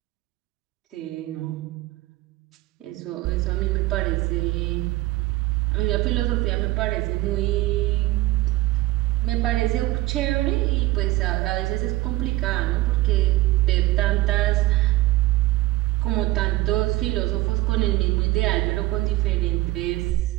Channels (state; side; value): quieter; left; 18.5 dB